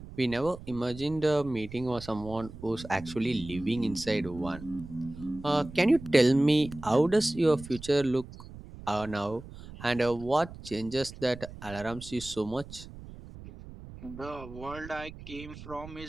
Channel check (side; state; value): right; noise; rumble, 15 dB below the sound